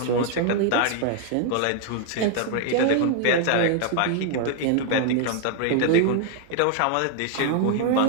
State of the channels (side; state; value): both; different; correlation 0.00